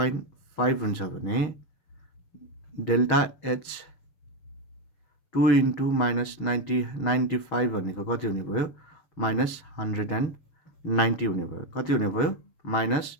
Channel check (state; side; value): late; right; 6.3 ms